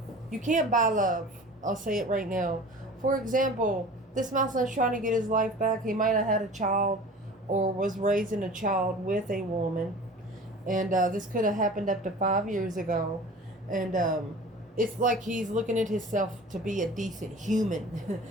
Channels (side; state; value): both; normal; correlation 0.41